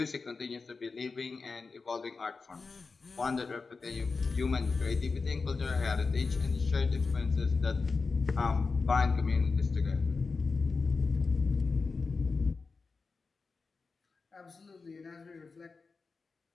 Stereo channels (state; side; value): quieter; right; 4.4 dB